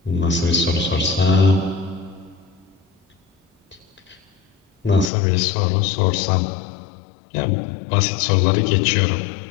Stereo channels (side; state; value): right; drops out; at 5.1 s